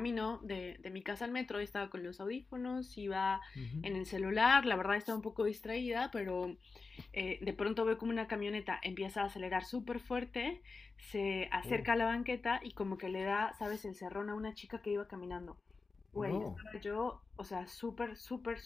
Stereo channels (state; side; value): quieter; right; 4.2 dB